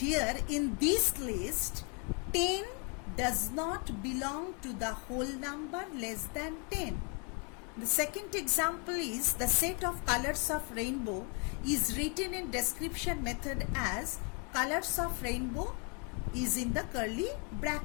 in this list, 10 does not belong to the whole number less than 10. The second example is the set of colors of rainbow is written in description method as colors of rainbow is in the curly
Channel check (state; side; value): quieter; right; 36.4 dB